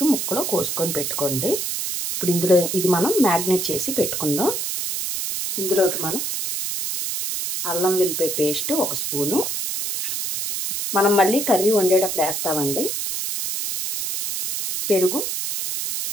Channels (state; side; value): noise; right; hiss, 2 dB below the sound